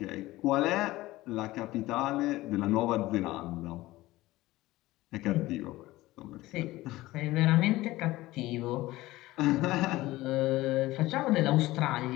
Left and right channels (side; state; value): right; quieter; 18.0 dB